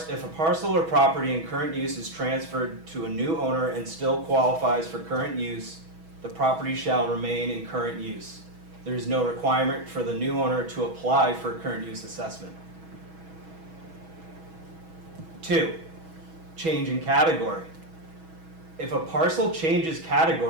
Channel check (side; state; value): left; late; 6.2 ms